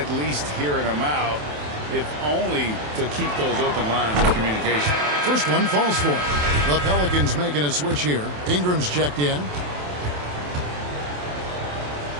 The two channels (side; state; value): left; late; 27 ms